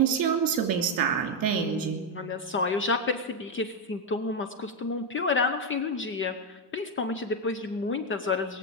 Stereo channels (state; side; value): normal; both; correlation 0.04